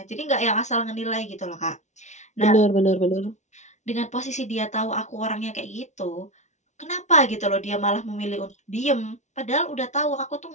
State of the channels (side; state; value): right; late; 0.34 ms